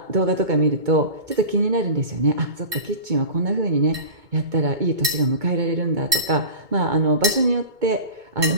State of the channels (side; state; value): left; late; 2.2 ms